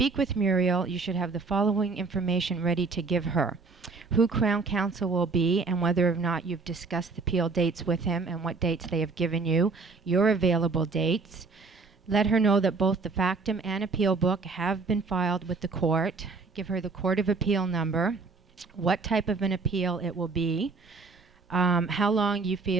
with Muriel, you should have the following information ready to give her: who Crown Counsel will be, and whether or not you've discussed the appeal dates with him and what dates they have given you, your available dates. Let her know that both the factum and appeal book have been filed with the court. Give her the Court of Appeal number, what type of an appeal it will be, how long you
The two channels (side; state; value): left; quieter; 4.3 dB